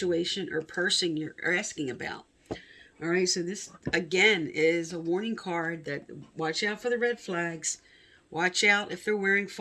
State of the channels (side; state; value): both; identical; correlation 1.00